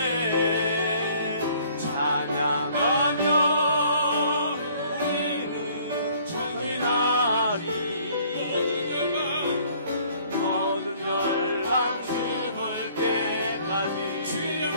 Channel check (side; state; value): both; inverted; correlation -0.58